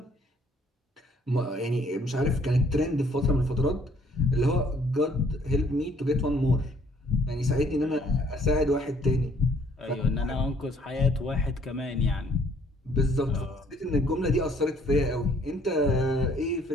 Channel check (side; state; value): both; normal; correlation 0.62